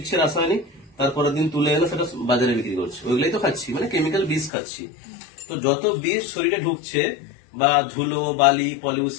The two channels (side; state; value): right; drops out; at 4.5 s